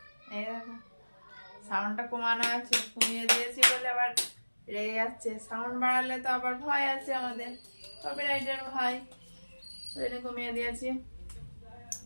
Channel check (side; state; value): both; inverted; correlation -1.00